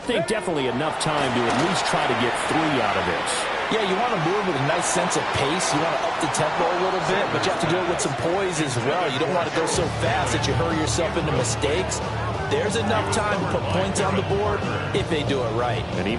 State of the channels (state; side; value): identical; both; correlation 1.00